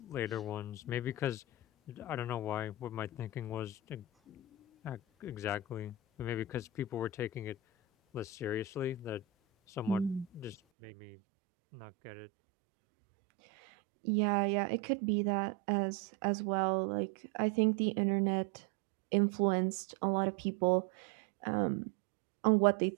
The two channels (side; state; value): left; drops out; at 10.6 s